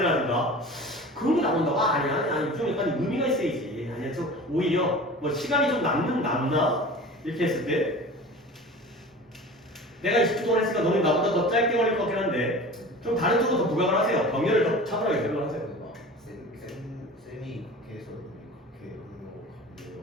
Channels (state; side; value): normal; both; correlation 0.38